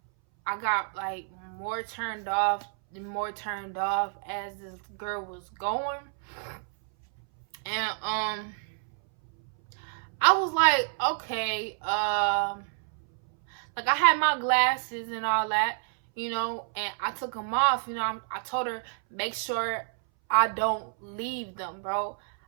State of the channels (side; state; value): left; silent; 59 dB below the other